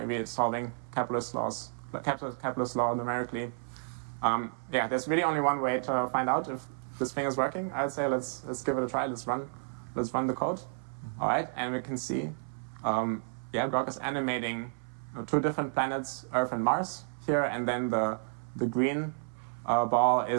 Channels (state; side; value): silent; left; 57 dB below the other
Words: it's solving Kepler's law numerically. There's really only one way to find out if this thing is working. I'd say let's give it a try. Let's run the code. All right, and we can see, Grok is animating two different planets, Earth and Mars here, and then the green ball